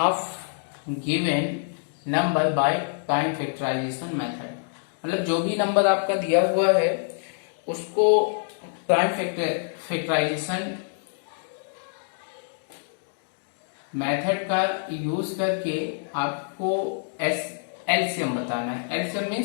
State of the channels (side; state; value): right; silent; digital silence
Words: given number by prime factorization method. मतलब जो भी नंबर आपका दिया हुआ है उसको प्राइम फैक्टराइजेशन मेथड का यूज करके आपको एलसीएम बताना है। LCM